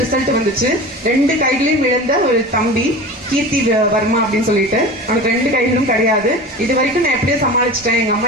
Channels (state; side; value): normal; both; correlation 0.33